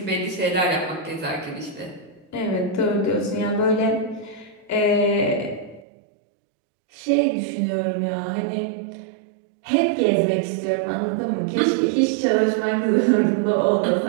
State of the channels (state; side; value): drops out; left; at 5.8 s